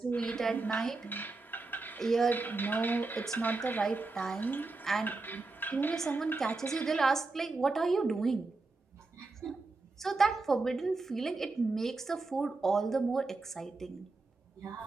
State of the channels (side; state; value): left; quieter; 3.6 dB